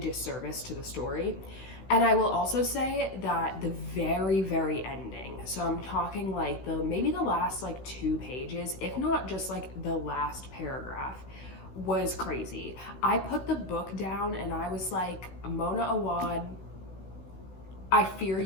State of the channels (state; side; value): late; right; 16 ms